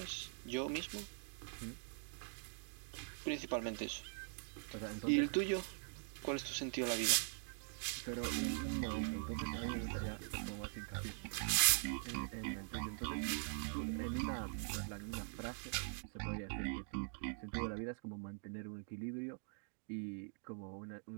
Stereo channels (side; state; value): left; silent; digital silence